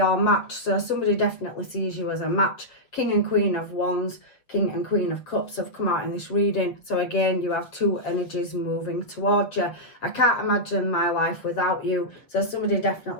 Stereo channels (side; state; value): right; late; 7.0 ms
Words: match. So somebody definitely sees you as a match. King and Queen of Wands, King and Queen of Cups have come out in this reading. So again, you have two energies moving towards you. I can't imagine my life without you. So somebody